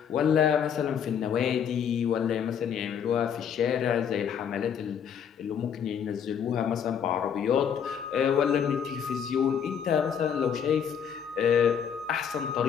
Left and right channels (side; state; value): right; quieter; 7.9 dB